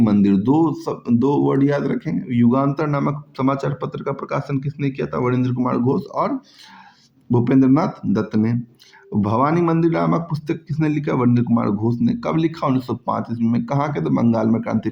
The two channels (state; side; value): identical; both; correlation 1.00